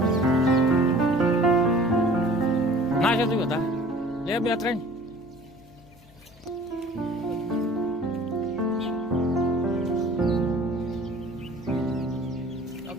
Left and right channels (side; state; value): left; noise; hum, 26 dB below the sound